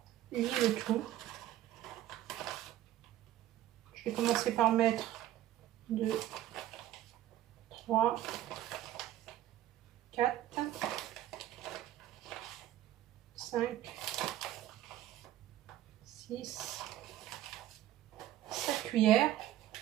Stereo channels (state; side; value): quieter; left; 13.4 dB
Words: lier le tout. Je vais commencer par mettre 2, 3, 4, 5, 6, 7 cuillères.